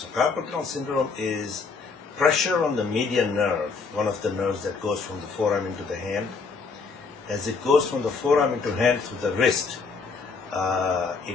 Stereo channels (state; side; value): quieter; right; 4.8 dB